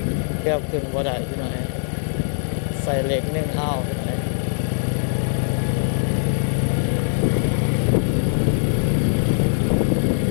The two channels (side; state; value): right; silent; digital silence